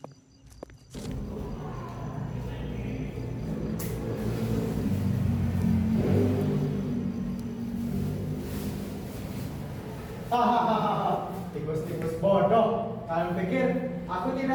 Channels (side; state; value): both; identical; correlation 1.00